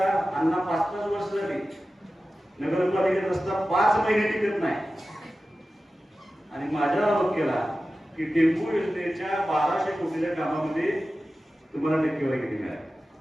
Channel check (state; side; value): normal; both; correlation 0.94